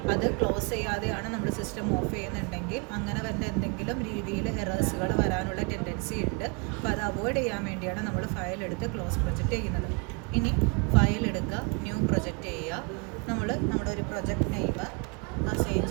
അത് ക്ലോസ് ചെയ്യാതെയാണ് നമ്മൾ സിസ്റ്റം ഓഫ് ചെയ്യുന്നുണ്ടെങ്കിൽ അങ്ങനെ വന്ന എന്തെങ്കിലും രീതിയിൽ എറേഴ്സുകൾ വരാനുള്ള ടെൻഡൻസി ഉണ്ട്. അപ്പോൾ അത് അവോയ്ഡ് ചെയ്യാൻ വേണ്ടിയാണ് നമ്മൾ ഫയൽ എടുത്ത് ക്ലോസ് പ്രൊജക്റ്റ് ചെയ്യുന്നത്. ഇനി ഫയൽ എടുക്കുക, ന്യൂ പ്രൊജക്റ്റ് ചെയ്യുക. നമ്മൾ നമ്മുടെ ഒരു പ്രൊജക്റ്റ് നെയിം അസൈൻ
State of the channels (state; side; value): quieter; left; 33.0 dB